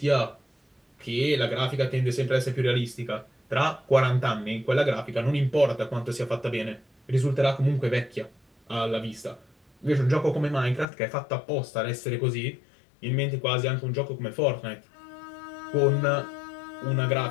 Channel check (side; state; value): right; drops out; at 10.9 s